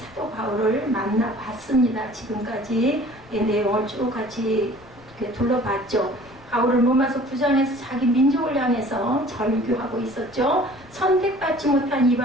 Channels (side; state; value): left; noise; rumble, 24 dB below the sound